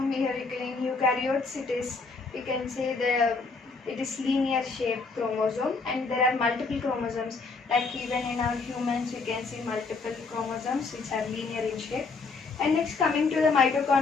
here in eukaryotes, we can see it is linear shaped chromosome, and there are multiple chromosomes. Like even in our humans, we can see multiple chromosomes which are linear in shape. And next, coming to the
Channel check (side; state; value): right; quieter; 4.3 dB